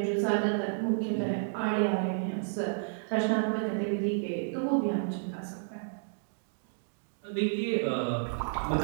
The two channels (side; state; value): left; silent; digital silence